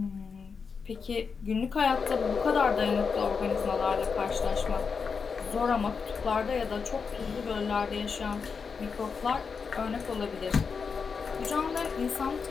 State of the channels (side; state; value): right; quieter; 5.5 dB